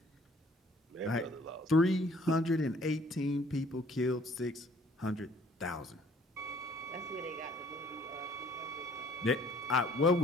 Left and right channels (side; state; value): both; normal; correlation 0.57